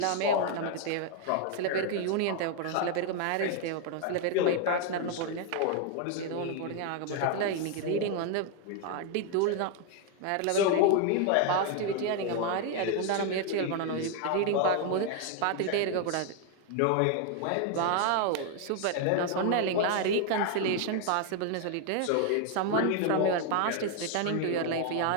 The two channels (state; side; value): different; both; correlation 0.00